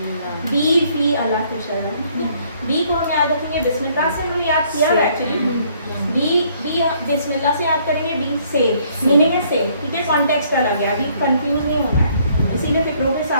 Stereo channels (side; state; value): both; inverted; correlation -0.64